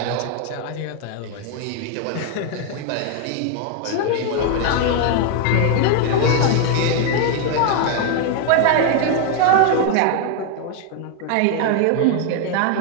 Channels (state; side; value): different; both; correlation 0.00